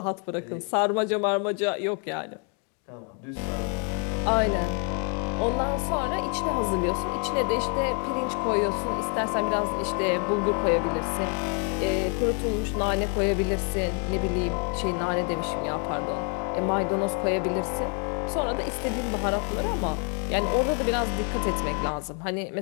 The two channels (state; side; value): quieter; right; 39.0 dB